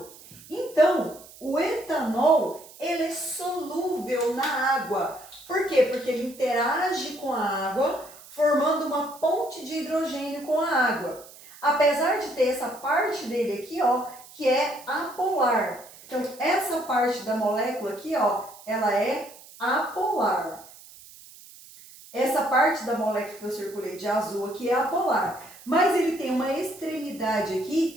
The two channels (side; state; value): right; noise; hiss, 20 dB below the sound